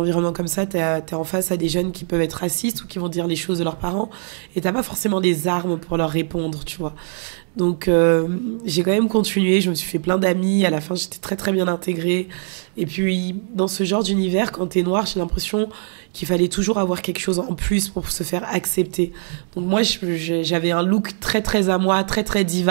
comme ça, t'es en face à des jeunes qui peuvent être racistes ou qui vont dire les choses de leurs parents. Et t'as pas forcément des armes pour leur répondre, tu vois. Donc, j'ai quand même continué. Je me suis fait plein d'amis. À la fin, j'étais très, très bien intégrée. Et puis, dans ce genre d'univers, quand t'es noire, j'ai l'impression qu'il fallait toujours avoir quelque chose en plus pour se faire accepter. Donc, moi, j'avais un look très, très à moi, très, très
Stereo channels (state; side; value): silent; left; 65 dB below the other